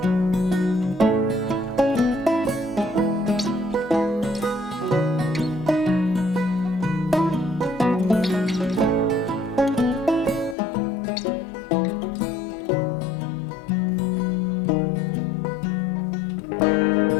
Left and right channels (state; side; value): drops out; right; at 10.6 s